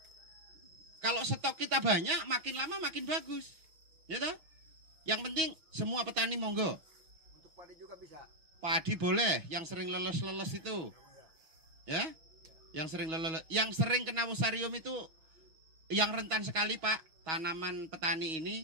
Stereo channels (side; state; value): left; late; 6.3 ms